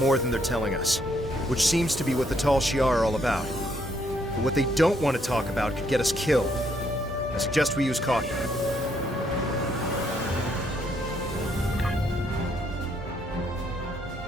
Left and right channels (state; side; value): normal; both; correlation 0.71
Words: than they're telling us, which seems to be what the Tal Shiar are all about. But what they don't want to talk about could get us killed. I suggest we use caution.